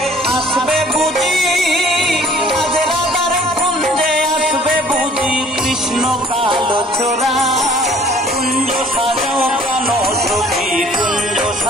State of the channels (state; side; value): normal; both; correlation 0.54